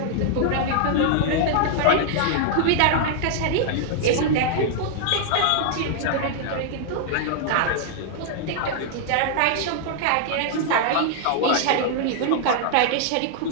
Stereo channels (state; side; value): different; both; correlation -0.01